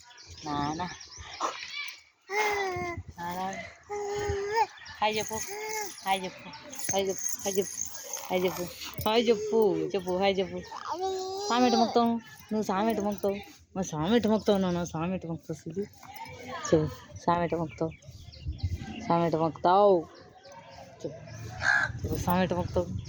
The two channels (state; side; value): identical; both; correlation 1.00